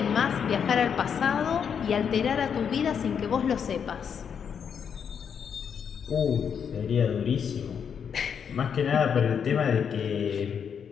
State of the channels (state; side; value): quieter; right; 7.3 dB